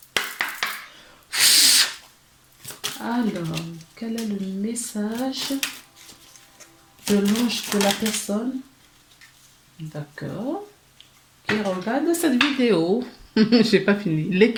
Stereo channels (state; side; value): identical; both; correlation 1.00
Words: Alors, quel est le message de l'ange de la personne? D'accord. Qui regarde cette vidéo. J'ai pas fini.